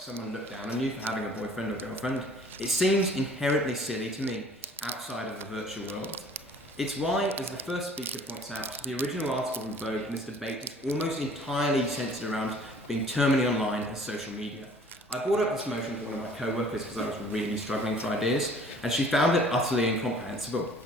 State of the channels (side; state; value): both; normal; correlation 0.53